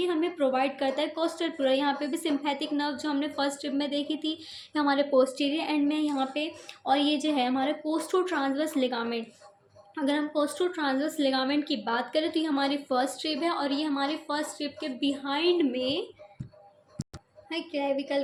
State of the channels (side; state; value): both; identical; correlation 1.00